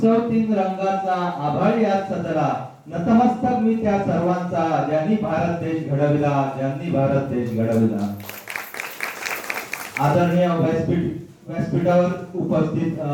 3 रंगाचा आभाळी आज सजला. नतमस्तक मी त्या सर्वांचा ज्यांनी भारत देश घडविला, ज्यांनी भारत देश घडविला. आदरणीय व्यासपीठावर उपस्थित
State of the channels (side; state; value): both; identical; correlation 1.00